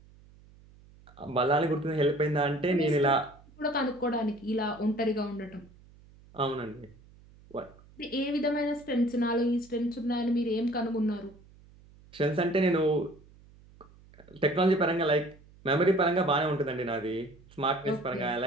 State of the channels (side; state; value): right; noise; hum, 25 dB below the sound